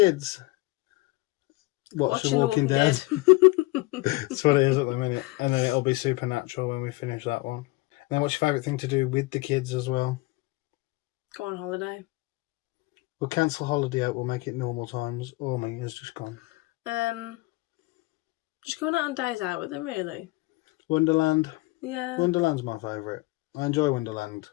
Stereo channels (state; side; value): quieter; right; 22.4 dB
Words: Watch Watching The Walking Dead. That's what it is at the minute. And then it'll be Supernatural when we finish that one. And then what's your favourite thing to do with the kids as well? Go on holiday. We'll cancel holiday out, we'll make it normal times. Oh, my, it's just gone. Just going out on days out with them, really. Wonderland. Yeah. Wonderland's my favourite. I enjoy Wonderland.